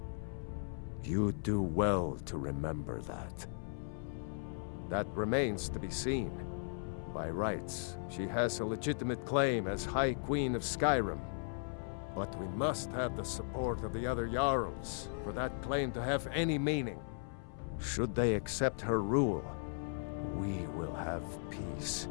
You'd do well to remember that. That remains to be seen. By rights, she has a legitimate claim as High Queen of Skyrim. But we must have the support of the other Jarls for that claim to have any meaning. Should they accept her rule, we will have peace.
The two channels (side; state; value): right; silent; 53 dB below the other